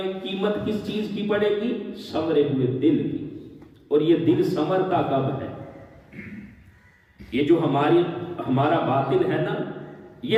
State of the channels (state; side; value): identical; both; correlation 1.00